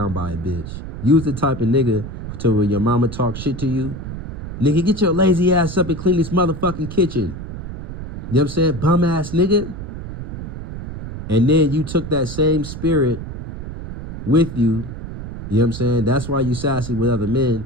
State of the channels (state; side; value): noise; right; rumble, 8 dB below the sound